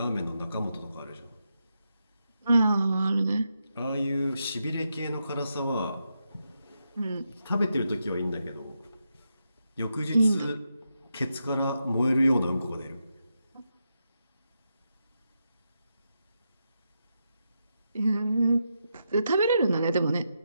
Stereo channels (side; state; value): both; inverted; correlation -0.85